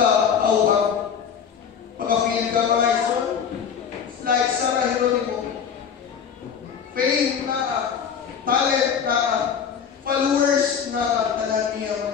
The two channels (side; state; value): right; quieter; 7.3 dB